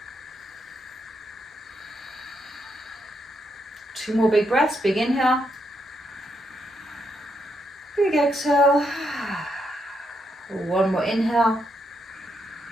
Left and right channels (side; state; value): both; normal; correlation 0.79